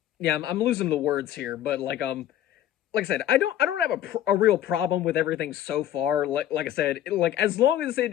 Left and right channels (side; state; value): right; quieter; 11.8 dB